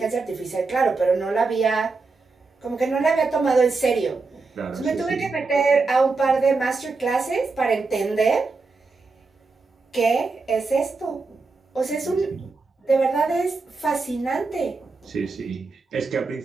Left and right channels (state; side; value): quieter; left; 4.0 dB